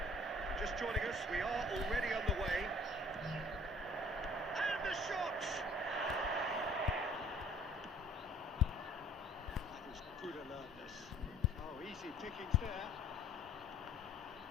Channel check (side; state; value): both; normal; correlation 0.52